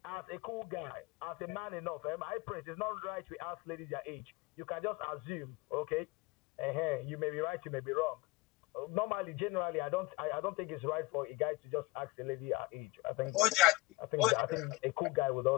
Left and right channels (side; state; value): right; quieter; 20.1 dB